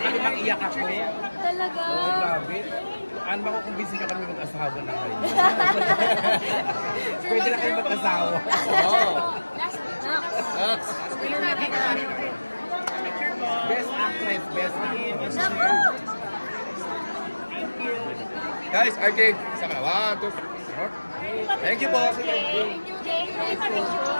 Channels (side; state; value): both; inverted; correlation -1.00